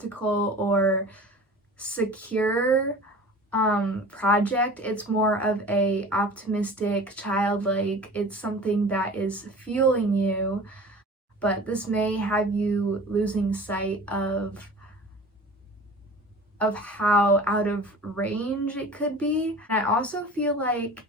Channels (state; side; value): normal; both; correlation 0.40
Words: or secure project. It's more of a optimistic, childlike, it's something that is fueling you, but this may have you losing sight of how out of range it could be. And I also feel like